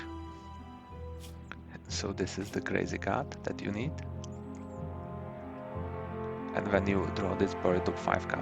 So this is the crazy card that you need. And when you draw this, bury top 5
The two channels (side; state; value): both; identical; correlation 1.00